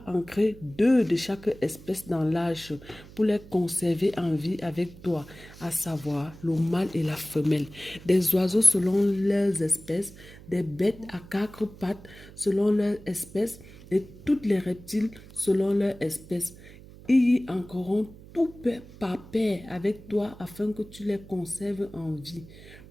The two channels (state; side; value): noise; right; hum, 19 dB below the sound